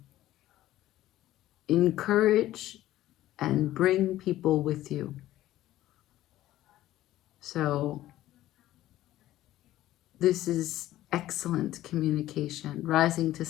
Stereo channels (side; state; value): right; quieter; 14.5 dB